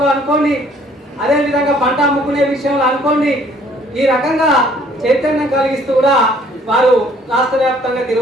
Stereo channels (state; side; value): normal; both; correlation 0.60